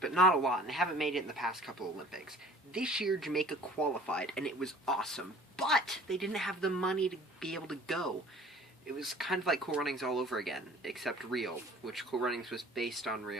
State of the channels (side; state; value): both; normal; correlation 0.49